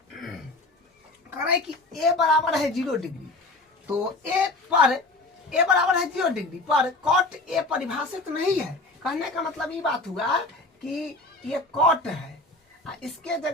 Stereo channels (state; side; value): quieter; right; 3.0 dB